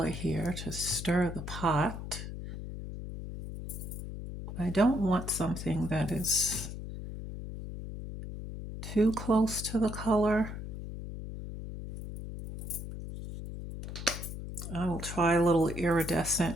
here to stir the pot. I don't want something that is too close to the color. I will try a little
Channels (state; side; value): noise; left; hum, 8 dB below the sound